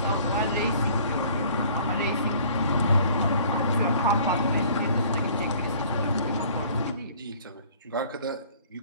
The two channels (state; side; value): inverted; both; correlation -0.53